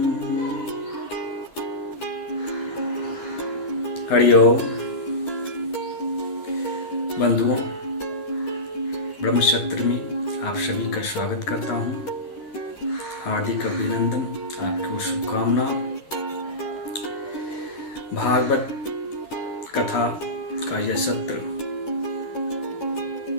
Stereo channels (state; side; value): late; right; 11 ms